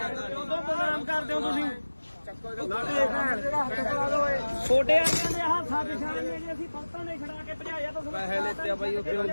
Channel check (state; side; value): inverted; both; correlation -1.00